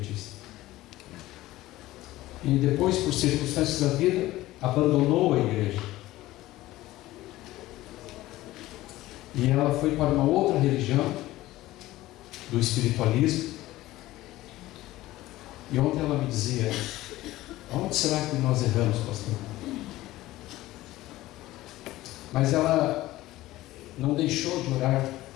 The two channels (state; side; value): quieter; right; 16.8 dB